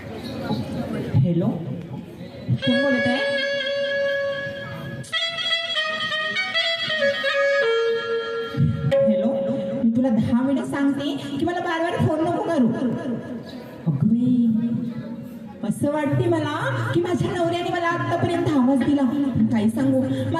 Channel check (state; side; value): identical; both; correlation 1.00